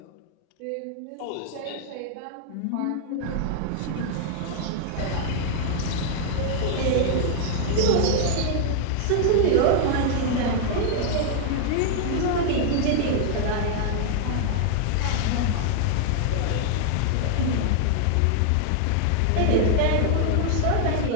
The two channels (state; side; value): different; both; correlation 0.00